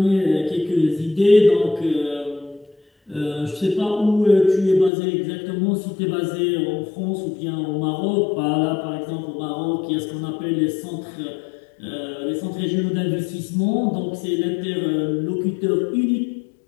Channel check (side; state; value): right; drops out; at 4.9 s